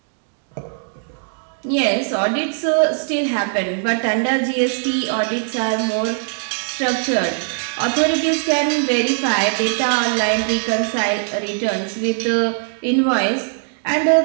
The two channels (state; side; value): silent; left; 66 dB below the other